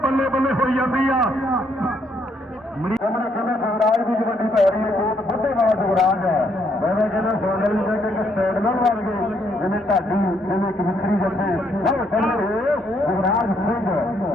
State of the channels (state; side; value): normal; both; correlation 0.71